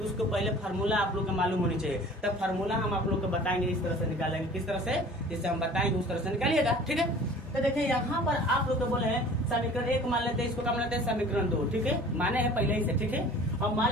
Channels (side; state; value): both; normal; correlation 0.46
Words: उसको पहले फार्मूला आप लोग को मालूम होनी चाहिए। तब फार्मूला हम आप लोग को बताएंगे, इस तरह से निकालेंगे, किस तरह से, जिससे हम बताएंगे उस तरह से निकालिएगा, ठीक है। तो देखिए यहाँ पर आप लोग को बोले हैं समीकरण 1 मान लेते हैं, इसको क्या मान लेते हैं, समीकरण 2, ठीक है, माने हैं पहले ही से, ठीक है। अब मान